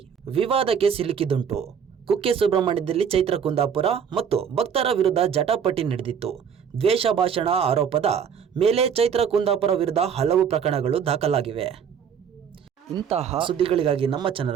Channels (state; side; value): quieter; left; 7.5 dB